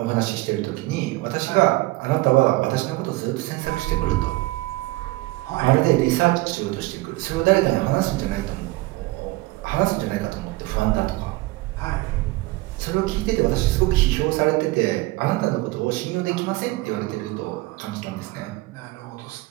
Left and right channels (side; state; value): left; quieter; 20.5 dB